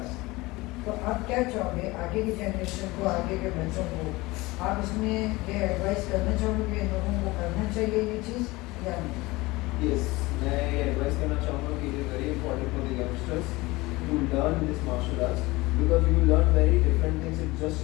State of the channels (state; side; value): quieter; right; 21.4 dB